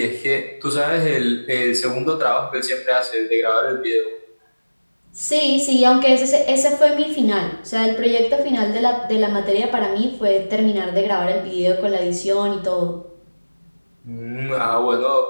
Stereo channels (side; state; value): both; inverted; correlation -1.00